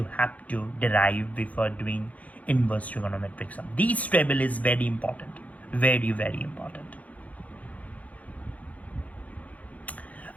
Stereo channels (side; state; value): right; late; 0.071 ms